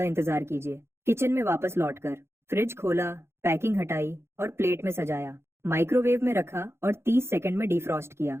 इंतजार कीजिए। किचन में वापस लौटकर फ्रिज खोला, पैकिंग हटाई और प्लेट में सजाया। माइक्रोवेव में रखा और 30 सेकंड में डिफ्रॉस्ट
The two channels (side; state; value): left; late; 0.12 ms